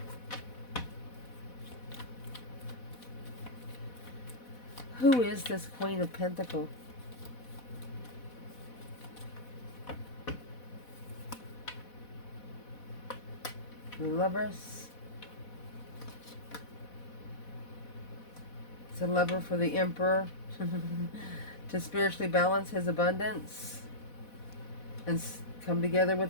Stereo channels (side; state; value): right; late; 4.1 ms